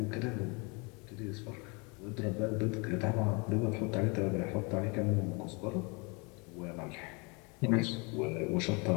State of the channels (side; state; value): right; quieter; 30.4 dB